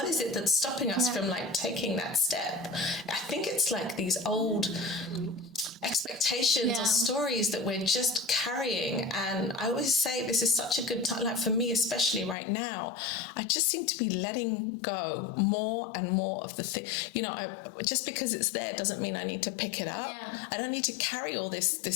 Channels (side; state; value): right; drops out; at 12.4 s